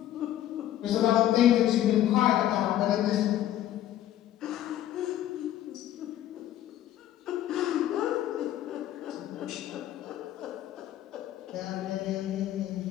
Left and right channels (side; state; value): right; quieter; 12.5 dB